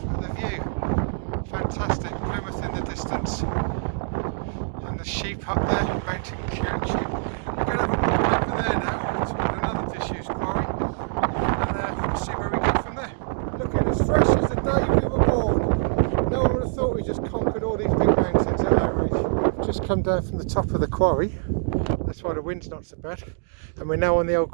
but the view, fantastic. Plymouth in the distance, and the sheep up there, mountain sheep. We're going to have a walk over there now toward another disused quarry, and we'll see where we go from there. Looking as fresh as the day we were born. No one would have thought we just conquered all these big mountains at our age. We've just come down from the top of the quarry. That's why the wind's not so bad. And we're now on the old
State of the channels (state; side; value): silent; left; digital silence